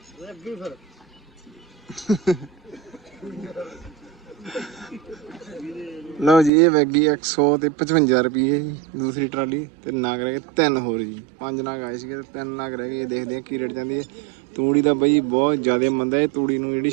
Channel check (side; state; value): left; drops out; at 6.5 s